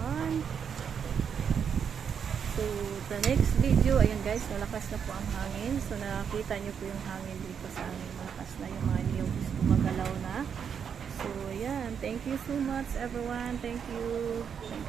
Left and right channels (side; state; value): left; quieter; 7.3 dB